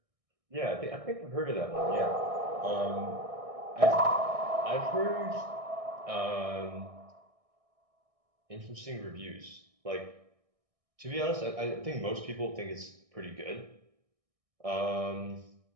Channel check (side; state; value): left; late; 1.6 ms